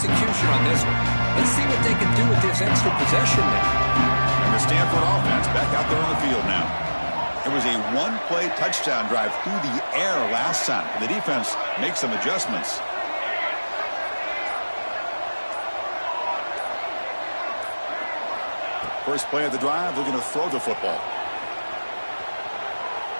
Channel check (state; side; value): inverted; both; correlation -1.00